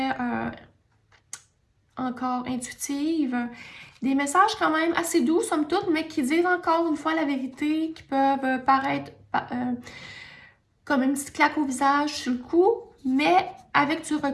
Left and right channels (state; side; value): identical; both; correlation 1.00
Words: encore intuitives. Des messages quand même assez doux, somme toute, mais qui disent encore une fois la vérité, qui peuvent paraître comme une petite claque au visage sur le coup, mais avec du